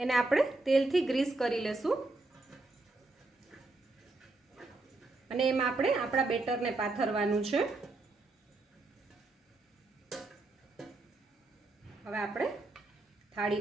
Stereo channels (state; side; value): quieter; left; 3.1 dB